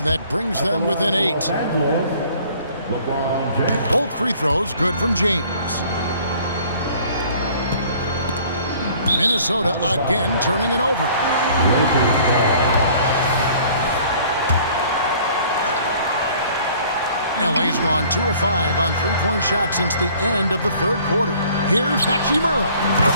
that brings them within 8. LeBron James. Both free throws good from James. Minnesota again turning it over. Lakers ball. LA's gone 2 of 5 on three-point shots since the end of the third quarter. Here's Hachimura.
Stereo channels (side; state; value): both; inverted; correlation -0.54